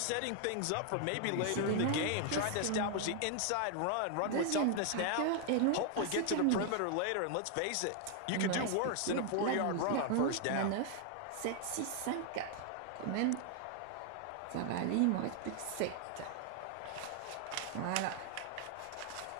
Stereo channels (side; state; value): both; different; correlation 0.00